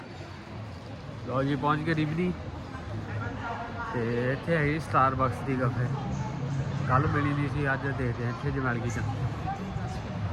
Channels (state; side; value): identical; both; correlation 1.00